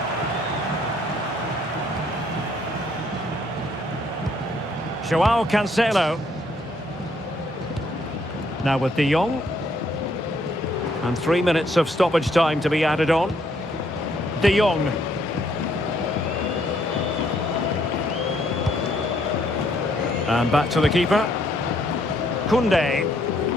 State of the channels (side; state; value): both; normal; correlation 0.69